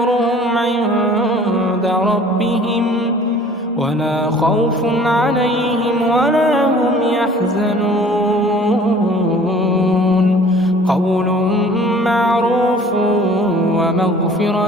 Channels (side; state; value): both; normal; correlation 0.50